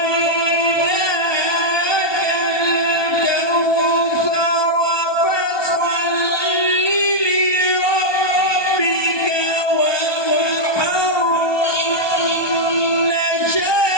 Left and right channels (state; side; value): late; right; 1.2 ms